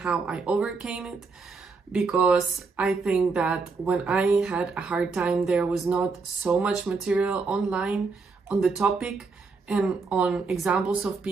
I overcame it, because I think that when I had a hard time, there was not so much material online on the topic and on examples of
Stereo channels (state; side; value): quieter; left; 4.4 dB